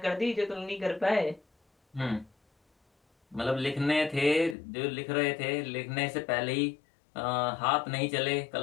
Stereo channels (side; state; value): right; drops out; at 4.5 s